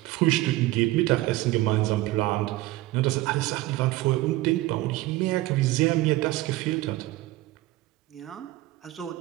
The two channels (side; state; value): left; quieter; 17.8 dB